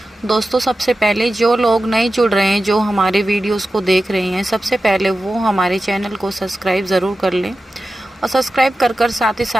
दोस्तों, सबसे पहले जो लोग नए जुड़ रहे हैं, जो हमारे वीडियोस को देख रहे हैं, सबसे पहले वो हमारे चैनल को सब्सक्राइब ज़रूर कर लें और सब्सक्राइब कर साथ ही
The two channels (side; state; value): both; normal; correlation 0.93